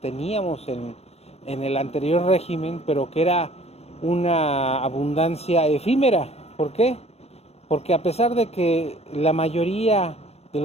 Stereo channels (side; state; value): right; late; 0.31 ms